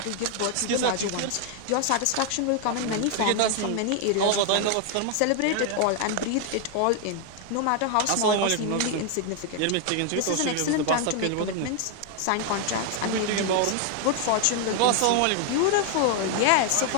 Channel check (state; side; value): different; both; correlation 0.00